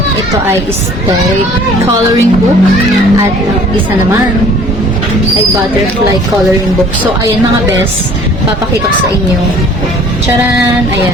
Ito ay aesthetic coloring book. At isa naman ay butterfly coloring book. So, ayan mga best. Papakita ko sa inyo. Charan!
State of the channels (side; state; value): both; normal; correlation 0.52